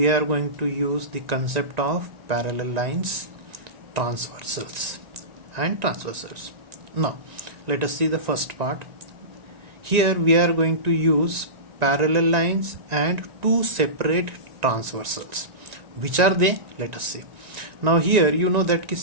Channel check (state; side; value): late; left; 1.9 ms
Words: are going to use the concept of parallel lines, transversals and transversals. Now let us see the first part. Here we are going to use parallel lines and two separate transversals. Which are they? Let us see. Now here you know that